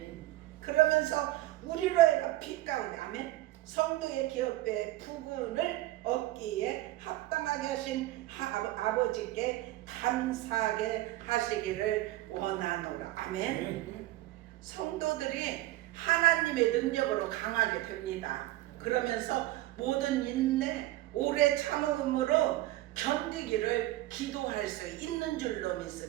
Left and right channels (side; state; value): left; quieter; 16.6 dB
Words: 그러면서 우리로 하여금 빛 가운데 아멘. 성도의 기업의 부분을 얻기에 합당하게 하신 아버지께 감사하게 하시기를 원하노라 아멘. 성도들이 하나님의 능력으로 강하게 됩니다. 그러면서 모든 인내 오래 참음으로 견디기를 기도할 수 있는 줄로